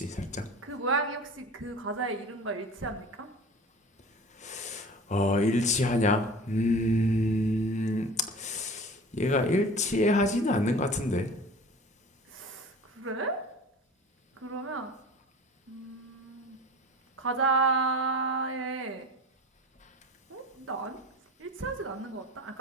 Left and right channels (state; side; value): normal; both; correlation 0.39